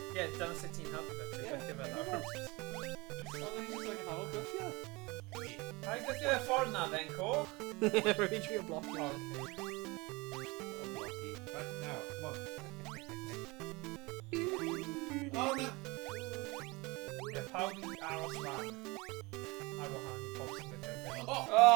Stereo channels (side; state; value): left; quieter; 24.7 dB